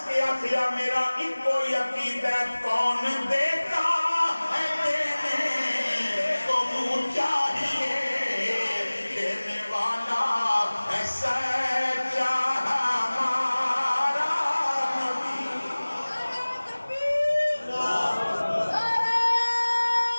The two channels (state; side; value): inverted; both; correlation -1.00